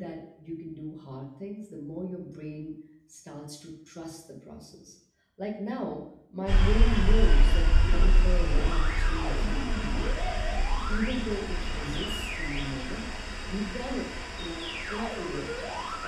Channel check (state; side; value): identical; both; correlation 1.00